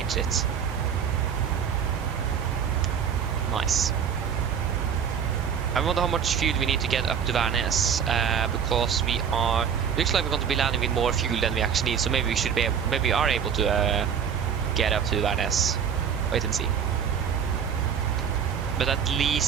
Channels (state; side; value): quieter; left; 7.6 dB